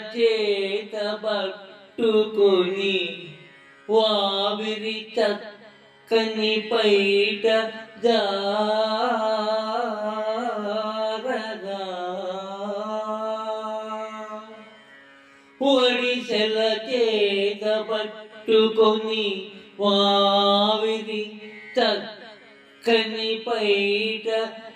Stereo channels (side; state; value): both; identical; correlation 1.00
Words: చేత పట్టుకొని వావిరి చక్కని పైట జారగా, ఒడిసెల చేత పట్టుకొని వావిరి చక్కని పైట